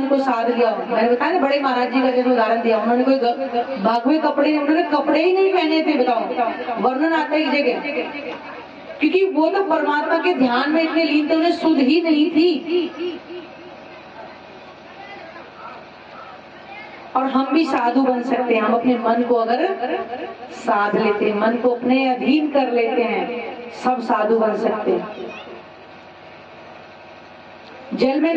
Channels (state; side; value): identical; both; correlation 1.00